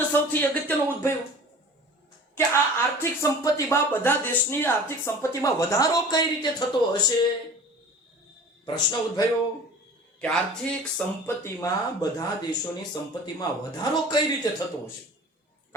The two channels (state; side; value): normal; both; correlation 0.41